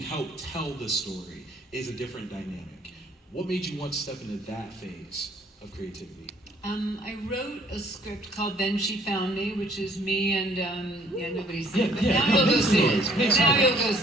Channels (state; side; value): normal; both; correlation 0.61